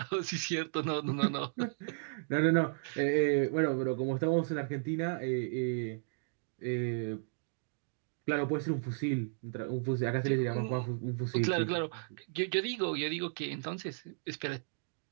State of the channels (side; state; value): left; silent; digital silence